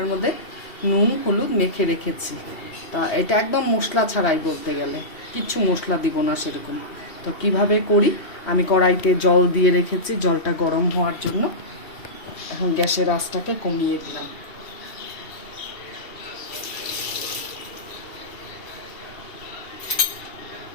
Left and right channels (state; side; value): late; right; 2.7 ms